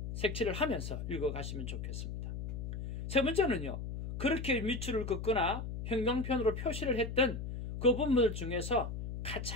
색칠을 하면서 읽어가시면 좋겠습니다. 세 번째는요, 그렇게 밑줄을 긋거나 형광펜으로 표시를 했던 그 부분들 중에서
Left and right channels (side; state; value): left; noise; hum, 5 dB below the sound